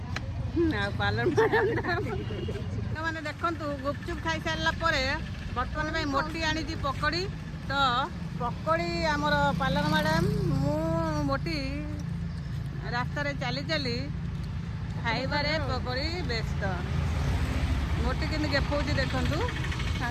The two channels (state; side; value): identical; both; correlation 1.00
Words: पालन मैंने देखु गुपचुप खाई सारा बर्तमान में मोटी आनी पकड़ी तो पकड़ी आमर पालन मैडम मु मोटी रास्तार चली चली खाइबारे पकड़ी व्यस्त मोटी कि देखा देखु